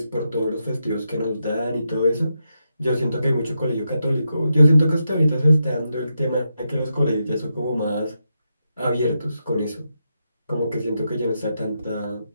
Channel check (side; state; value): both; inverted; correlation -0.85